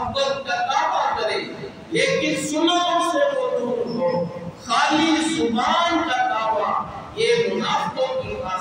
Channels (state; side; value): identical; both; correlation 1.00